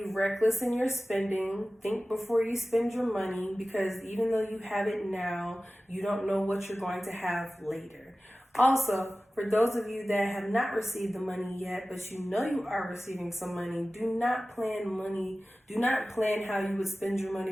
reckless in your spending. Think before you spend your money, because even though you have it now, you don't know what you're going to have later. Also, for those of you that have not received the money yet, but you know you are receiving some money, do not plan money. Do not plan how you would spend your money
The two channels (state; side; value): normal; both; correlation 0.96